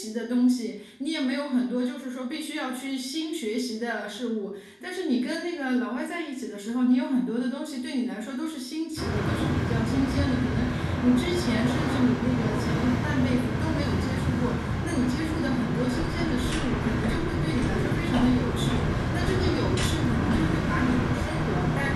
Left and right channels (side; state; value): both; identical; correlation 1.00